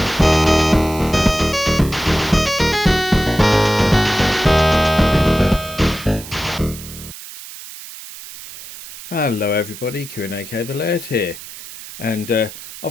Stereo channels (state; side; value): noise; right; hiss, 14 dB below the sound